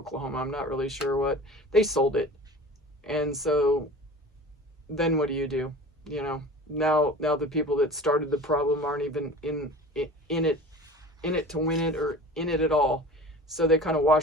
I'm not really sure what, they sold it. And so then what do? You know, now the people that started the problem aren't even in it to win it or in it at all. So they kind of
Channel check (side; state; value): both; normal; correlation 0.39